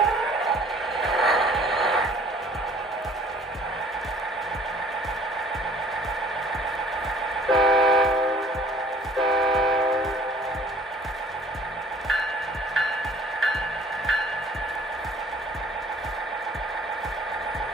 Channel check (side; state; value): both; normal; correlation 0.54